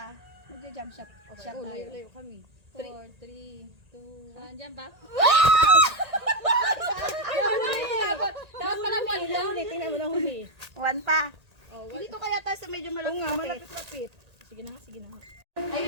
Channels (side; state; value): left; late; 1.8 ms